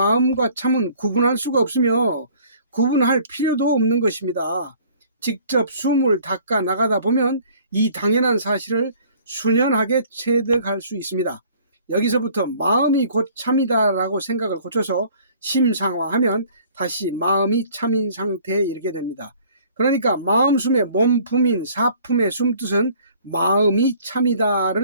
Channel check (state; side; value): inverted; both; correlation -0.54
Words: 참은 구분할 수가 없으며 구분할 필요도 없는 것입니다. 직접 숨을 닦아 나가다 보면 이 당연한 사실을 수년하게 체득할 수 있습니다. 여기서부터 마음이 곧 참이다라고 생각을 고쳐서 심상화하면 다시 마음이 참인 상태에 이르게 됩니다. 그러니까 마음숨의 몸품인 사품의 숨뜻은 마음이